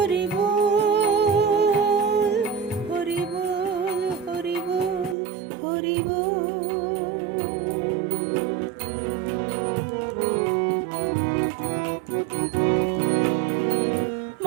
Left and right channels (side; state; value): left; drops out; at 5.2 s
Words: বল, হরি বল, হরি বল, হরি বল।